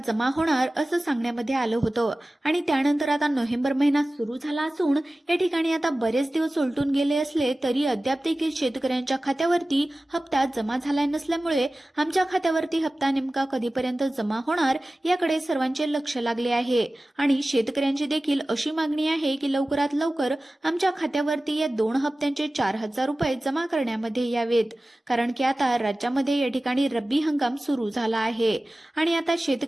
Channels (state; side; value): normal; both; correlation 0.96